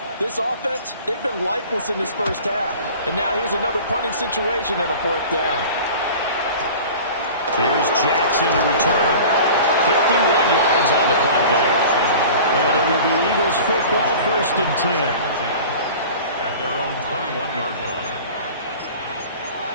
This offense, they've been lifeless in this first half. And now here's another punting situation and a 4th down. Here's Jackson to return. 51 yards on the punt there. And it will be Eagles football, 1st and 10. At their own 21-yard line.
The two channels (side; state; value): both; inverted; correlation -0.40